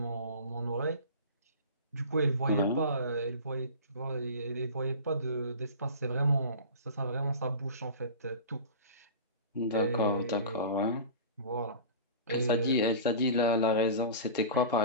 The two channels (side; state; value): both; inverted; correlation -0.35